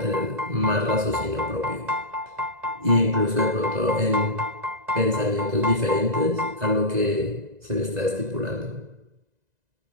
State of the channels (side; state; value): left; late; 2.0 ms